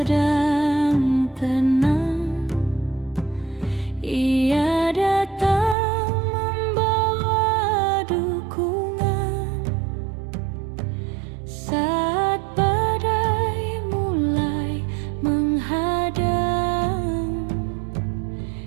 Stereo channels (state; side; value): drops out; left; at 5.8 s